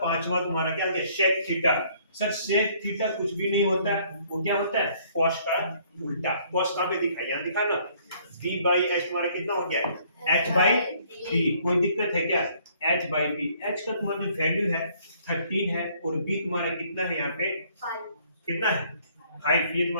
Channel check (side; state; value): both; inverted; correlation -0.62